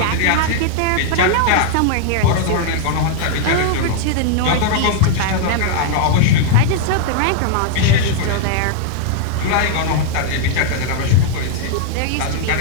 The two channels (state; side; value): different; both; correlation 0.00